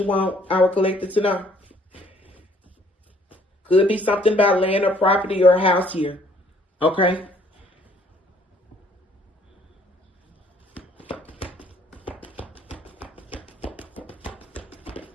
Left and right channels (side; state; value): both; normal; correlation 0.61